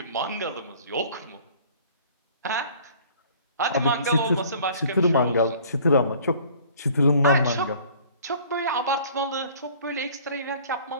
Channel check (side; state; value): both; inverted; correlation -0.51